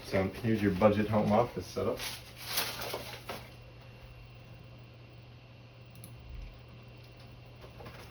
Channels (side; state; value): both; identical; correlation 1.00